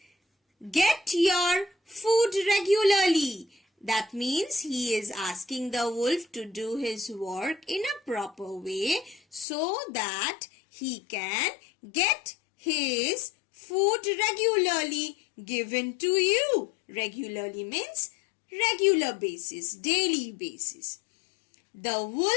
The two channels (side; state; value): right; drops out; at 9.5 s